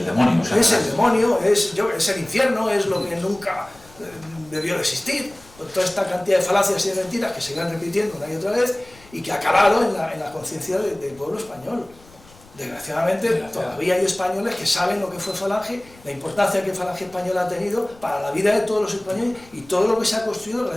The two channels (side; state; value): left; noise; rumble, 25 dB below the sound